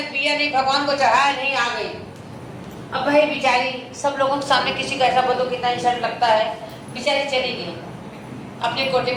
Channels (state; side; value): identical; both; correlation 1.00